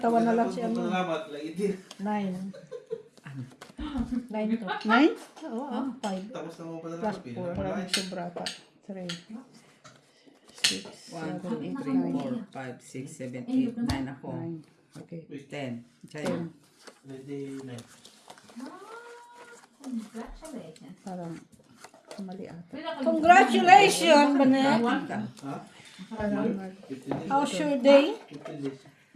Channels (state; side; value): identical; both; correlation 1.00